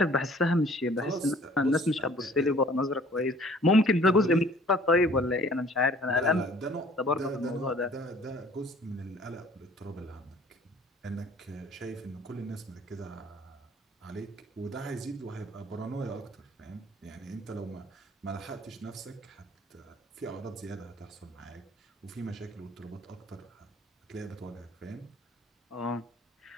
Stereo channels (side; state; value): both; normal; correlation 0.53